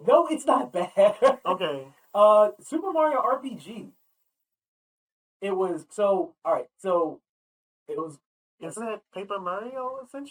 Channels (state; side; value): identical; both; correlation 1.00